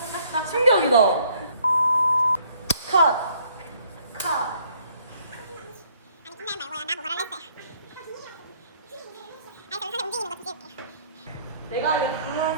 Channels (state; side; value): inverted; both; correlation -0.63